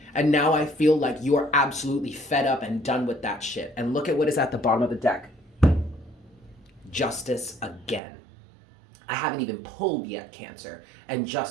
And now I feel like you are absolutely fed up and done with that shit. And look at what is at the bottom of the deck. Justice again. I haven't even pulled yet, Cancer, and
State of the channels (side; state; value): left; drops out; at 8.0 s